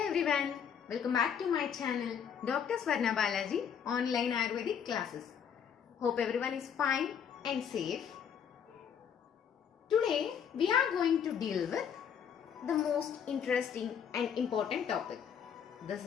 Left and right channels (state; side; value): quieter; right; 7.9 dB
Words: everyone, welcome back to my channel Dr. Swarna Balaji online Ayurvedic classes. Hope everyone is fine and safe. Today we are going to deal with the most interesting and important topic. This